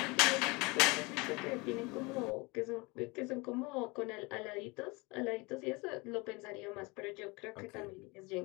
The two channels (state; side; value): quieter; right; 26.1 dB